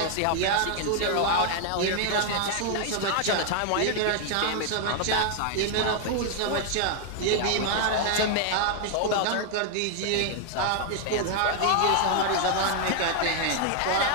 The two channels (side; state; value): both; different; correlation 0.00